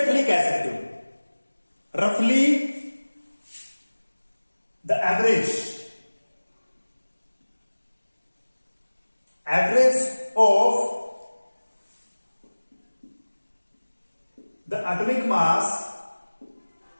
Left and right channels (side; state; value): both; inverted; correlation -1.00